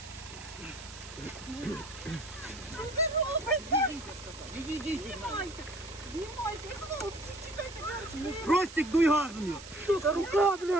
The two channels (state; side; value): noise; right; hiss, 15 dB below the sound